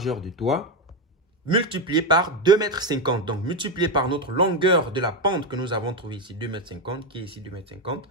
du toit, multiplié par 2,50 m. Donc, multiplié par notre longueur de la pente que nous avons trouvée ici, 2,50 m, qui est ici 2,50 m.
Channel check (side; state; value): both; normal; correlation 0.09